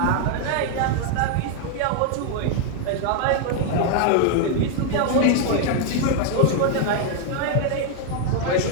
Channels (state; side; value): different; both; correlation 0.00